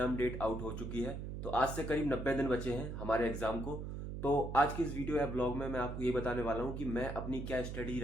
डेट आउट हो चुकी है। तो आज से करीब 90 दिन बचे हैं हमारे एग्जाम को। तो आज की इस वीडियो या ब्लॉग में मैं आपको ये बताने वाला हूँ कि मैं अपनी क्या स्टडी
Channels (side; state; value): right; noise; hum, 6 dB below the sound